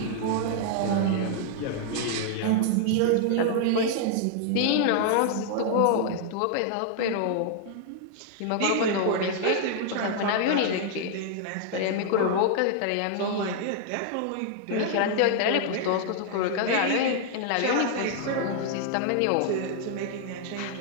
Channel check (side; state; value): both; different; correlation 0.00